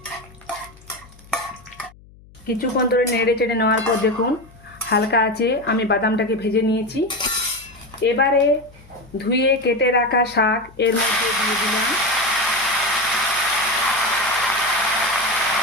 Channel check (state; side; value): noise; left; hum, 24 dB below the sound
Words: কিছুক্ষণ ধরে নেড়ে চেড়ে নেওয়ার পর দেখুন হালকা আছে আমি বাদামটাকে ভেজে নিয়েছি। এবারে ধুয়ে কেটে রাখা শাক এর মধ্যে দিয়ে দিলাম।